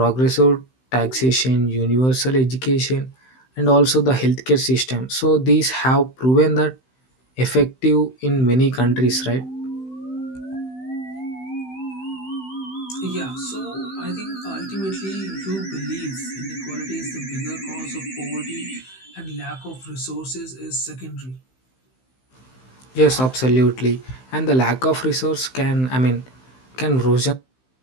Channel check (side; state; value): right; late; 16 ms